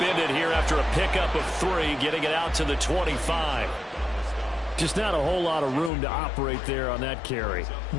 here after a pickup of 3, getting it out to the 25. Just not a whole lot of room to operate there on that carry.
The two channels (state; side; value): drops out; right; at 5.9 s